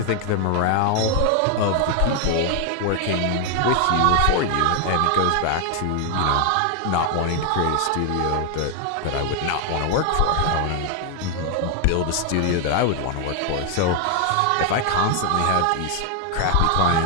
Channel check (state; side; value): different; both; correlation 0.00